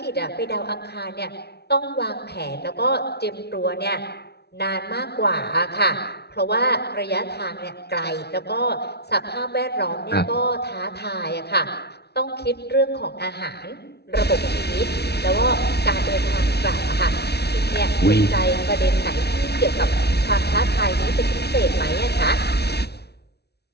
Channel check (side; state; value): right; late; 0.48 ms